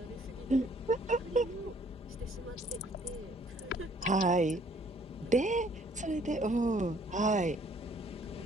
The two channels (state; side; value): normal; both; correlation 0.61